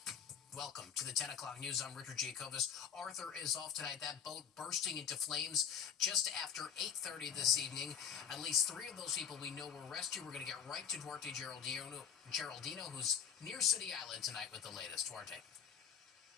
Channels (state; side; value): quieter; right; 7.9 dB